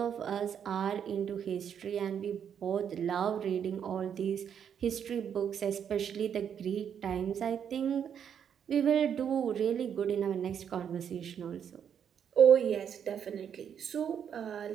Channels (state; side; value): quieter; left; 8.2 dB